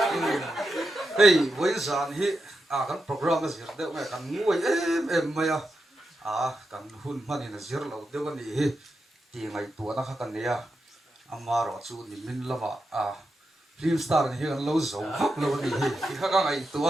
hey với sản hi cái program là gì đấy mày cần ngồi em mày cần hun mà này là gì lâu đấy cái này thì ngày tuổi nó khác cái này mà rồi chú thì mình làm film star này cái lâu rồi khác lâu cái này thì khác cái ngày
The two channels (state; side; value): normal; both; correlation 0.87